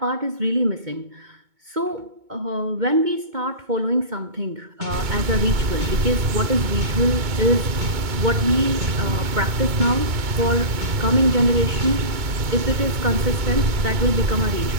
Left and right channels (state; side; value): late; left; 2.2 ms